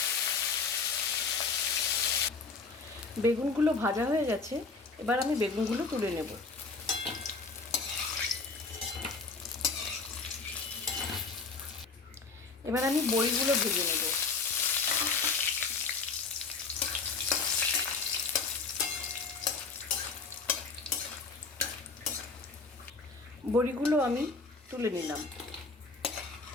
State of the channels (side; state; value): right; quieter; 4.4 dB